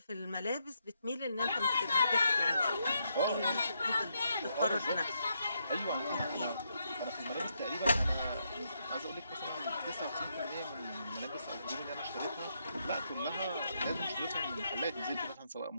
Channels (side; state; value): both; inverted; correlation -0.79